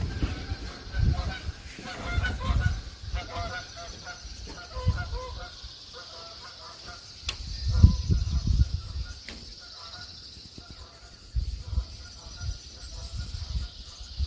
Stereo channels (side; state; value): both; identical; correlation 1.00